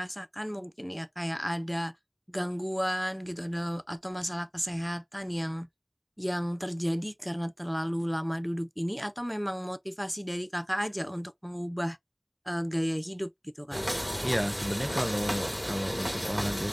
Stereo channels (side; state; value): both; identical; correlation 1.00